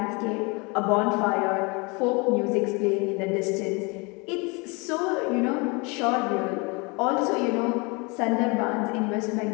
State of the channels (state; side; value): quieter; right; 29.0 dB